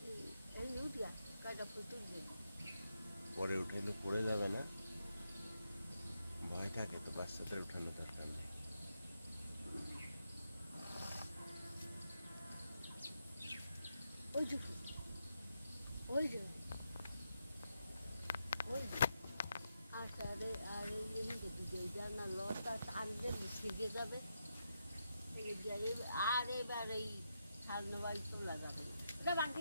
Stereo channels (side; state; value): both; inverted; correlation -0.83